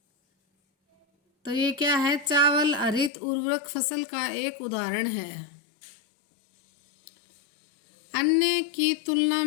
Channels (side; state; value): right; drops out; at 3.1 s